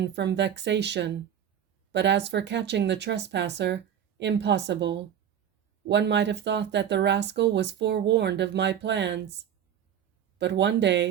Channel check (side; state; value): left; quieter; 9.3 dB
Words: from vexation, but as for catching the trespasser, impossible. One might have thought that the rascal was forewarned of my plans. But one